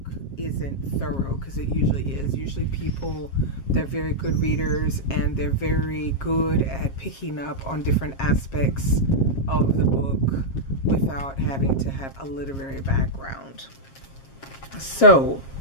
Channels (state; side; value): late; right; 7.4 ms